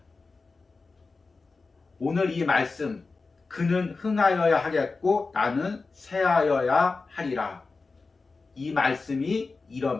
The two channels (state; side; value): quieter; right; 4.0 dB